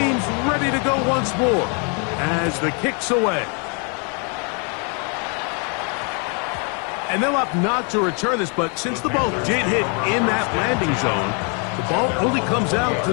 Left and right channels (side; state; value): right; quieter; 37.2 dB